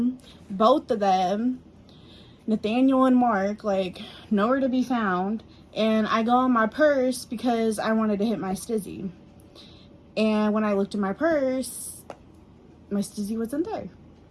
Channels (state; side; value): identical; both; correlation 1.00